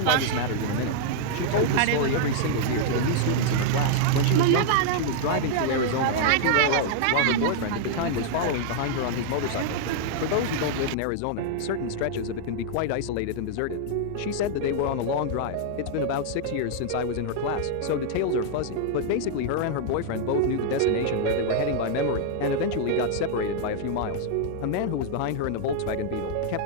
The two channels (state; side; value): different; both; correlation -0.01